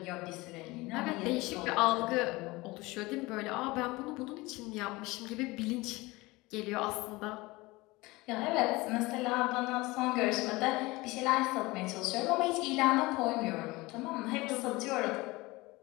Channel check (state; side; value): quieter; right; 21.9 dB